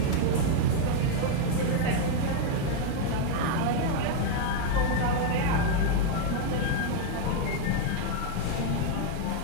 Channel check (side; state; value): both; different; correlation 0.00